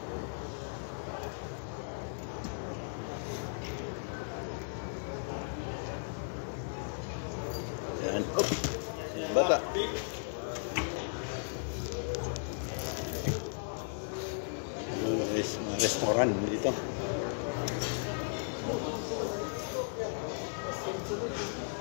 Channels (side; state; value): right; silent; 54 dB below the other